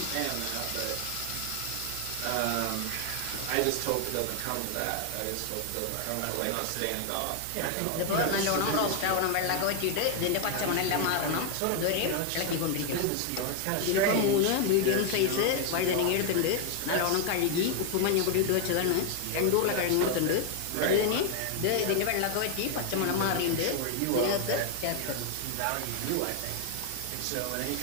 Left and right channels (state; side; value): different; both; correlation 0.00